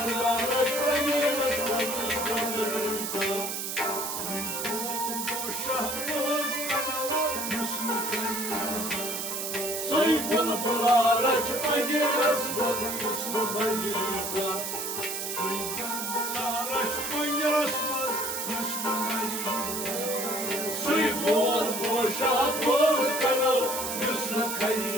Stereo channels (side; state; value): right; noise; hiss, 4 dB below the sound